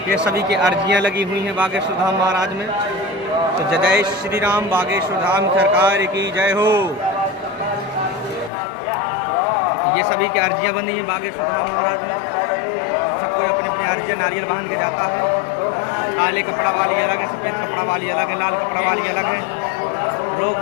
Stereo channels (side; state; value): right; drops out; at 8.5 s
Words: ये सभी की अर्जियां लगी हुई हैं बागेश्वर धाम महाराज में। तो जय जय श्री राम, बागेश्वर धाम सरकार की जय हो। ये सभी की अर्जियां बनी हैं बागेश्वर धाम महाराज में। सबको अपनी अपनी अर्जियां नारियल बांध के जाता है। काले कपड़ा वाली अलग है, सफ़ेद कपड़ा वाली अलग है, लाल कपड़ा वाली अलग है। रोग